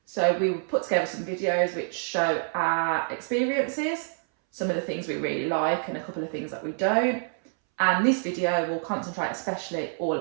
So we put together some videos which show our experiences, some of the things we really like and a couple of things that we don't. And this video will concentrate especially all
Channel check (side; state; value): left; silent; 60 dB below the other